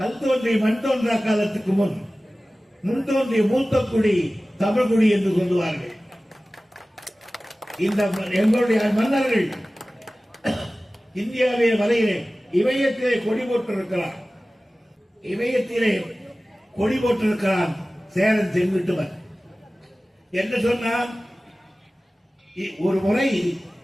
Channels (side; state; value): both; normal; correlation 0.97